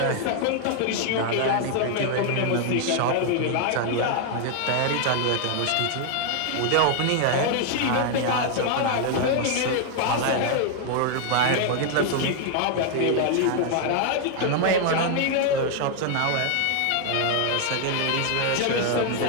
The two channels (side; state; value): both; different; correlation 0.00